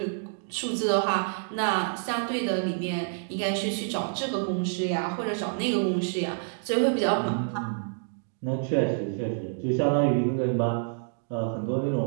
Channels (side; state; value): left; silent; digital silence